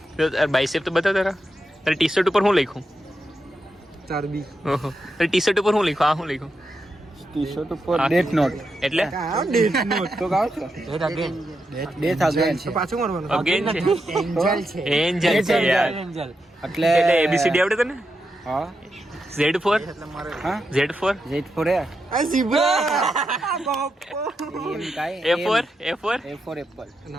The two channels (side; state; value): both; normal; correlation 0.85